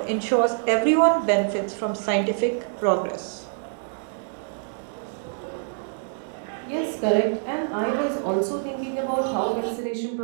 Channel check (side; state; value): left; silent; 61 dB below the other